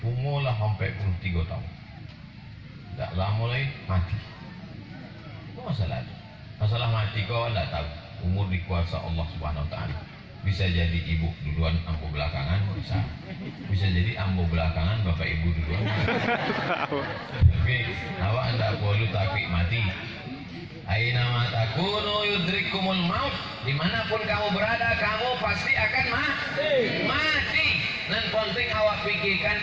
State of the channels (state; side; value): identical; both; correlation 1.00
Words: Umurlah sampai 23 tahun. Tak lama lagi mati. Itu masa lalu. Masalah mati kau tidak tahu. Umur di kuasa Allah Subhanahu Wa Taala. Bisa jadi ibu duluan, ambo belakangan, bisa jadi ambo belakangan, bapak ibu duluan. Tapi awak tidak perlu takut mati. Aina ma takunu yudrikumul maut. Dimanapun kamu berada, kamu pasti akan mati. Dan penting awak pikirkan